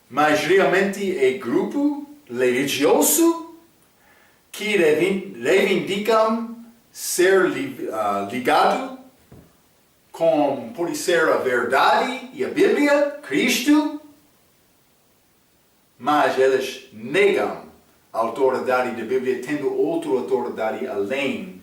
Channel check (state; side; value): identical; both; correlation 1.00